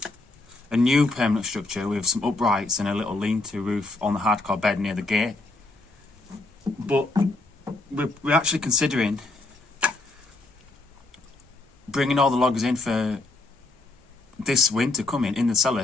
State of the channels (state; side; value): quieter; right; 3.0 dB